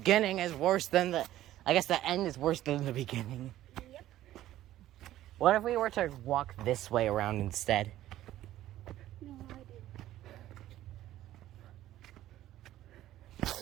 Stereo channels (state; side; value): quieter; left; 13.9 dB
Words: is worse than the. I guess the end is worse than the beginning. Yep. What if we were to walk this way around instead? No,